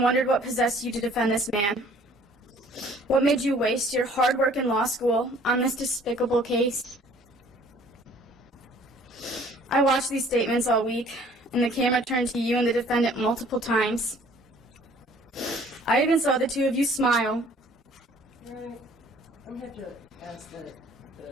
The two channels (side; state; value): both; normal; correlation 0.55